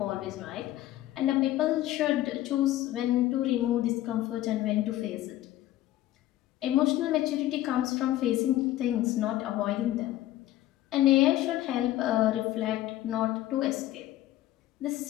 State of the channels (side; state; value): right; quieter; 14.6 dB